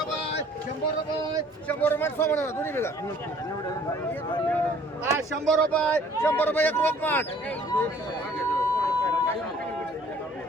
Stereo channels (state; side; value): normal; both; correlation 0.56